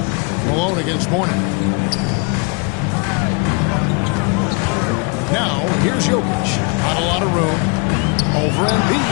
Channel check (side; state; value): right; quieter; 32.2 dB